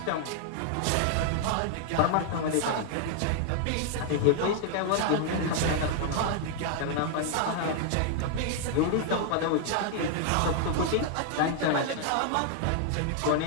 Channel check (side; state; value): both; different; correlation 0.00